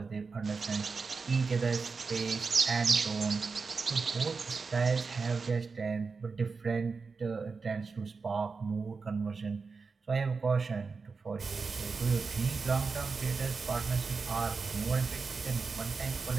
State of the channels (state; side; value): quieter; left; 4.7 dB